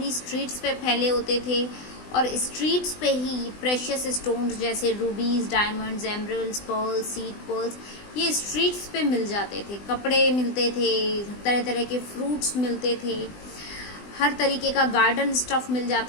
स्ट्रीट्स पे फैले होते थे, और स्ट्रीट्स पे ही प्रेशियस स्टोन्स जैसे रूबीज, diamonds, emeralds, pearls, seed pearls, ये स्ट्रीट्स पे मिल जाते थे। कपड़े मिलते थे, तरह तरह के फ्रूट्स मिलते थे, हर तरीके का गार्डन स्टफ मिल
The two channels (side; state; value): right; late; 20 ms